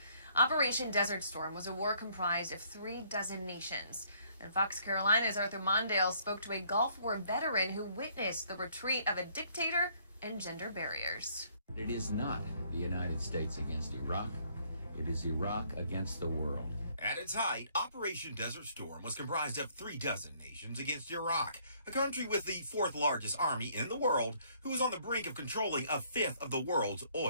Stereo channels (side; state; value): both; inverted; correlation -0.64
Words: Operation Desert Storm was a war comprised of 36 nations. And Fox Carolina's Arthur Mondale spoke to a Gulf War veteran who witnessed the retreat of a dictator and gender barriers. It is not the United States against Iraq. It is Iraq against the world. At its height, Operation Desert Storm was comprised of 36 nations against Iraq, a country with the fourth largest army in the world, who was on the brink of controlling a fifth of the world's